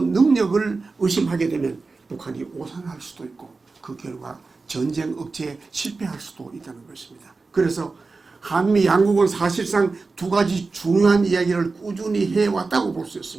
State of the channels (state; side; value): quieter; left; 4.0 dB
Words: 능력을 의심하게 되면 북한이 오산할 수도 있고 그 결과 전쟁 억제에 실패할 수도 있다는 것입니다. 그래서 한미 양국은 사실상 두 가지 중요한 이야기를 꾸준히 해왔다고 볼 수